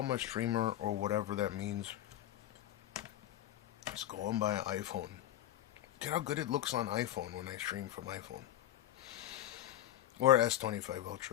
a streamer or whatever that means, just go and buy an iPhone. Get how good it looks on iPhone when I stream from iPhone. Or S25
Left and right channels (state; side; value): quieter; right; 12.8 dB